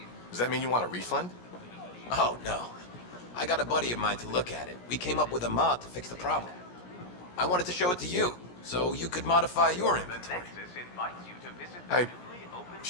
does that mean you want a refund? Oh, no. I got a buddy of mine to look at it. We came up with a mod to fix the problem. I wanted to show it to you, so you could modify your inventory.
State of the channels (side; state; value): right; late; 17 ms